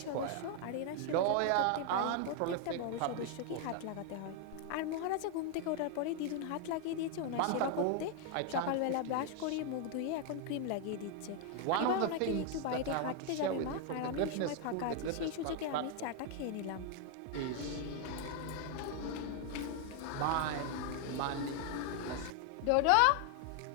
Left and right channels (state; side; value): different; both; correlation 0.00